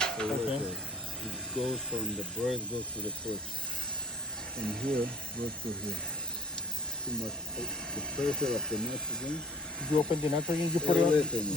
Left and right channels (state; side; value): normal; both; correlation 0.48